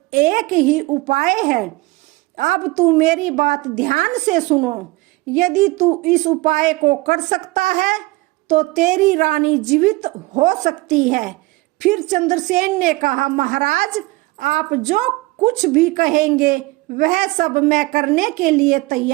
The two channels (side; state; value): left; quieter; 22.2 dB